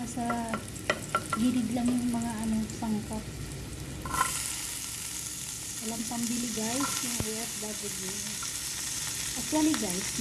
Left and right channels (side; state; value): both; identical; correlation 1.00